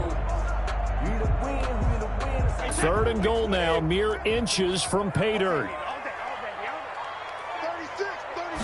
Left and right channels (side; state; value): both; identical; correlation 1.00